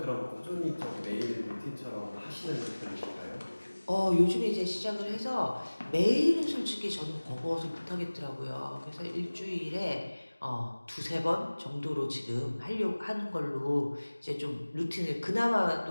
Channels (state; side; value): inverted; both; correlation -1.00